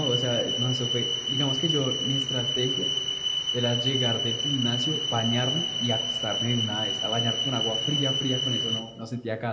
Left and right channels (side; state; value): both; identical; correlation 1.00